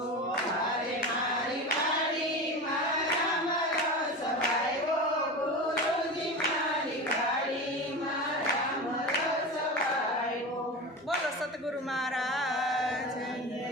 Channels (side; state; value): both; normal; correlation 0.27